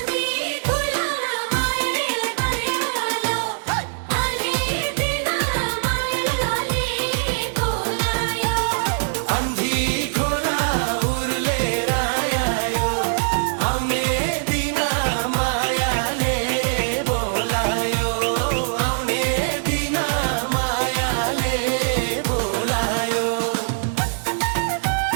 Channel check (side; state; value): left; silent; digital silence